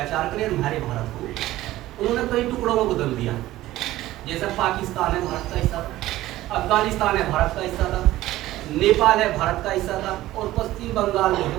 करे, हमारे भारत को उन्होंने कई टुकड़ों में बदल दिया। जैसे पाकिस्तान है भारत का हिस्सा था, अफगानिस्तान है भारत का हिस्सा था, नेपाल है भारत का हिस्सा था, और पश्चिम बंगाल जो है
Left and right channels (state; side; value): quieter; left; 15.8 dB